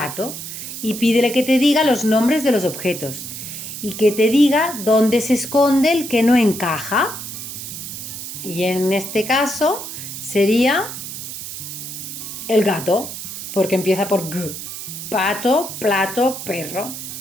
y pídele que te diga los nombres de los objetos y que te diga dónde se esconde el que no encaja. Y en este caso sería el gato, porque empieza por G. Pato, plato, perro.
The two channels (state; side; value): noise; right; hiss, 9 dB below the sound